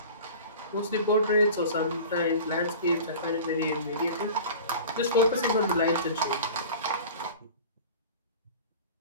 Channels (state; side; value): inverted; both; correlation -0.38